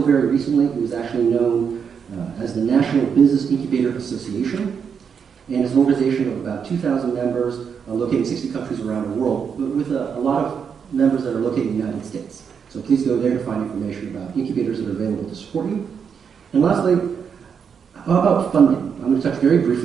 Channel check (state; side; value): quieter; left; 6.8 dB